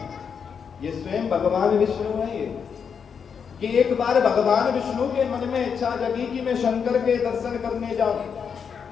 ये स्वयं भगवान विष्णु है। ये कि एक बार भगवान विष्णु के मन में इच्छा जगी कि मैं शंकर के दर्शन करने जाऊं,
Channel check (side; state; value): right; quieter; 6.7 dB